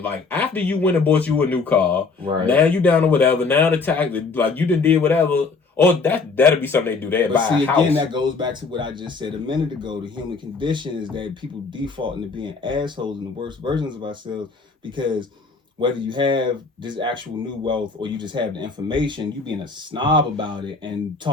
Like, after you went and bought you a new car, right? Now you down to whatever. Now the tax, like, you done did whatever. Oh, that'll be something they do. They buy a house. Again, that goes back to what I just said a minute ago. The human condition is that people default into being assholes and the worst versions of ourselves, because whether you have this actual new wealth or you just have the information, you being a snob about it and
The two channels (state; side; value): quieter; right; 4.3 dB